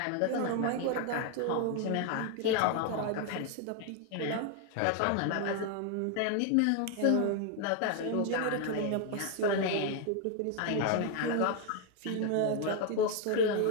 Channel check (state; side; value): different; both; correlation 0.01